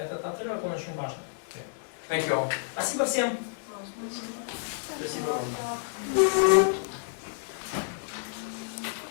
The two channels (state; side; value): silent; right; digital silence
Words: отрывок, он очень важен. Thank you all. Спасибо всем. Спасибо вам.